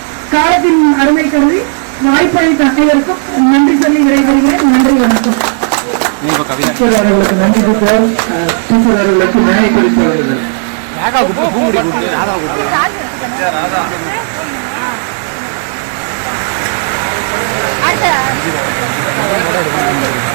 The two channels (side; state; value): left; silent; 58 dB below the other